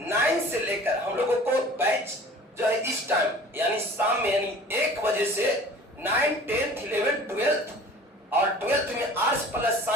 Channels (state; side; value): normal; both; correlation 0.45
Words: 9 से लेकर हम लोगों को बैच जो है इस टाइम यानी शाम में यानी 1 बजे से 9, 10th, 11th, 12th और 12th में आर्ट्स प्लस